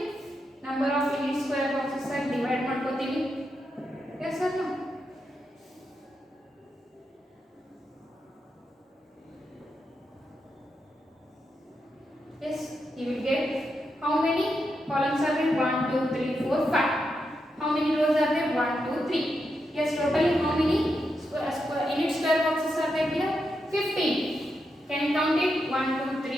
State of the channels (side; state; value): both; normal; correlation 0.85